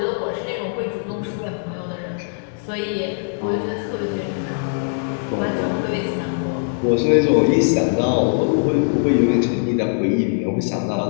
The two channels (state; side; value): silent; right; digital silence